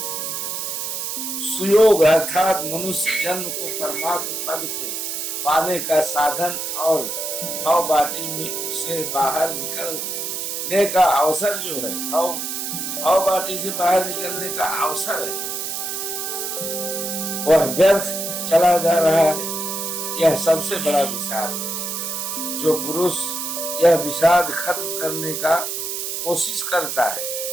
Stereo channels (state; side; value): noise; right; hiss, 4 dB below the sound